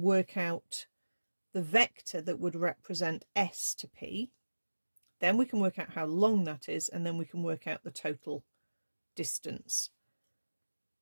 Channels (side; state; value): both; inverted; correlation -1.00